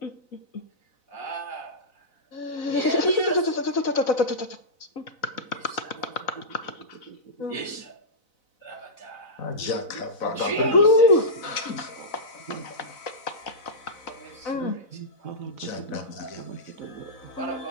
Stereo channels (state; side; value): late; right; 4.0 ms